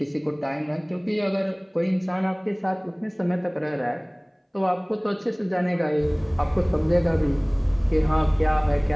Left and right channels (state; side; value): identical; both; correlation 1.00